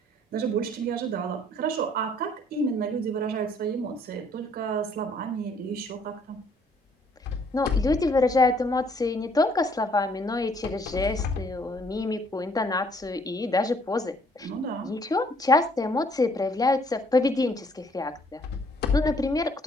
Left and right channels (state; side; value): normal; both; correlation 0.63